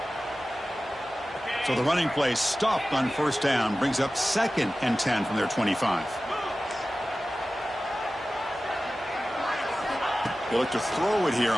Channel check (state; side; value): normal; both; correlation 0.95